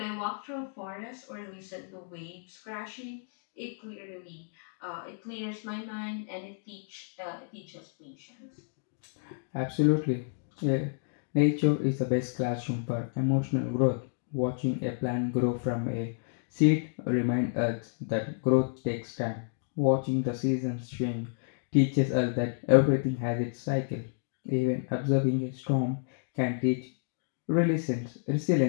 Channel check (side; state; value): right; silent; digital silence